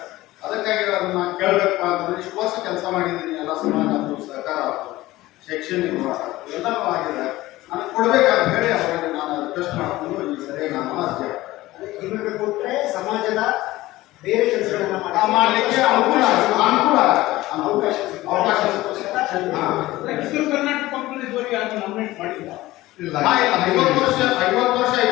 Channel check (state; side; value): quieter; right; 17.6 dB